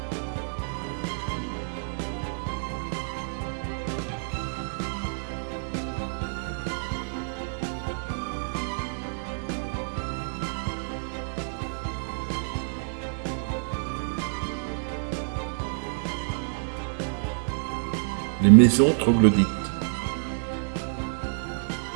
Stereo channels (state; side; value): silent; left; digital silence